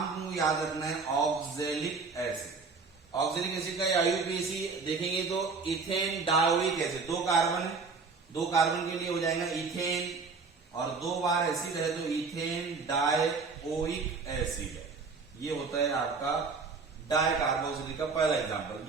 याद रखना है, ऑक्जेलिक एसिड। ऑक्जेलिक एसिड का IUPAC देखेंगे तो ethane dioic acid, 2 carbon, 2 carbon के लिए हो जाएगा इथेन, और 2 बार एसिड है तो इथेन डायोइक एसिड है। ये होता है आपका डाई कार्बोक्सिलिक का पहला एग्जांपल।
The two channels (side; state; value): left; quieter; 4.6 dB